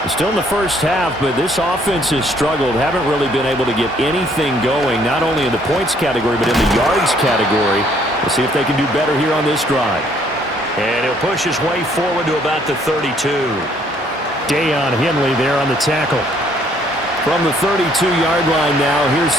Still in the first half, but this offense has struggled. Haven't really been able to get anything going, not only in the points category, but in the yards category. We'll see if they can do better here on this drive. And he'll push his way forward to about the 32. Dayon Henley there on the tackle. From the 32-yard line now, here's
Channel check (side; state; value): both; normal; correlation 0.64